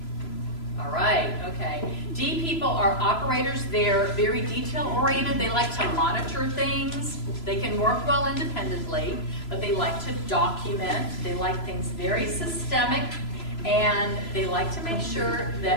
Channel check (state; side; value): late; right; 3.0 ms